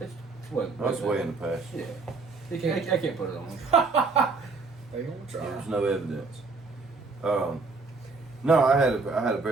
what? That's way in the past. Yeah, You can't. I can't put it on. They gonna try. There's no evidence. No, I had a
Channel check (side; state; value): left; quieter; 4.0 dB